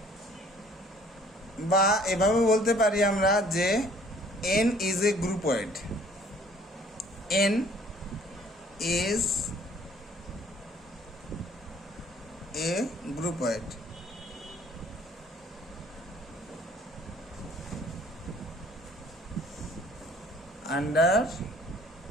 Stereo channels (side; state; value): both; normal; correlation 0.57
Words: বা এভাবে বলতে পারি আমরা যে n is a groupoid. N is a groupoid. Under